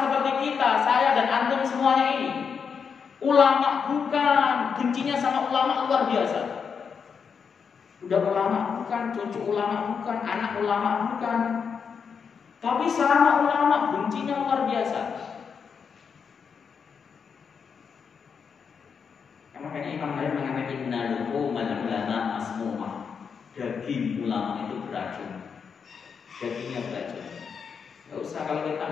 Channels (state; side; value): quieter; right; 6.3 dB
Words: kita, saya dan antum semuanya ini? Ulama bukan, bencinya sama ulama luar biasa. Udah ulama bukan, cucu ulama bukan, anak ulama bukan. Tapi sama ulama bencinya luar biasa. Makanya Imam Nawawi mengatakan innal ulama masmumah. Daging ulama itu beracun. Dagingnya beracun. Gak usah kalau kita